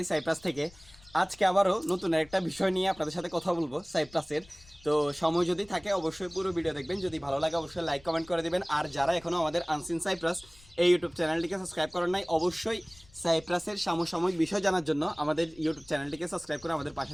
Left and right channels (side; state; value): left; noise; rumble, 25 dB below the sound